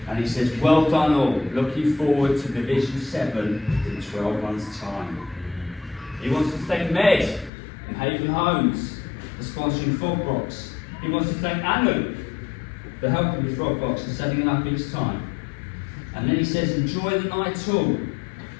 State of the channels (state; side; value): drops out; right; at 7.5 s